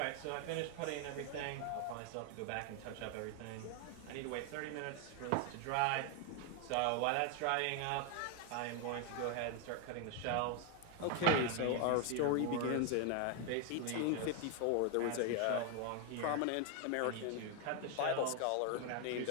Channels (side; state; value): both; different; correlation 0.01